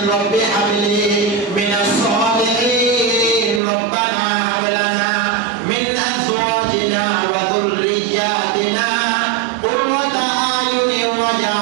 রব্বি হাবলি মিনাস সালিহিন, রব্বানা হাব লানা মিন আজওয়াজিনা ওয়া যুররিয়াতিনা কুররাতা আয়ুনিন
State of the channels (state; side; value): drops out; left; at 3.6 s